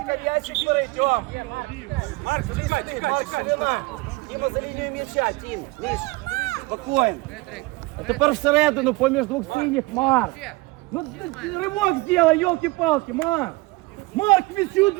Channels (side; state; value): left; quieter; 23.4 dB